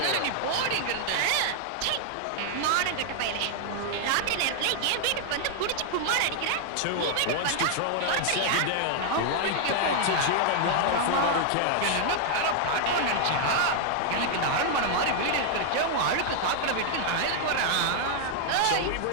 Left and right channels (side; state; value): both; different; correlation 0.00